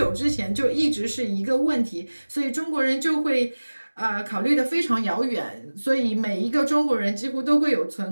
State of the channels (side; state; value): both; inverted; correlation -1.00